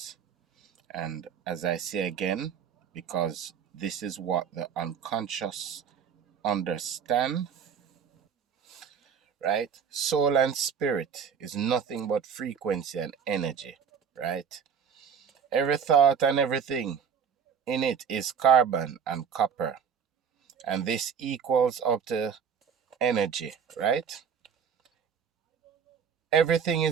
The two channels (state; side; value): quieter; left; 7.1 dB